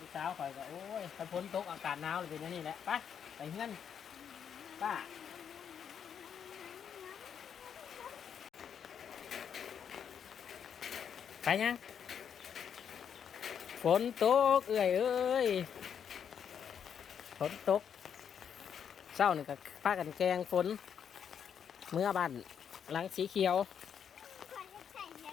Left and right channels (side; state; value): right; quieter; 7.9 dB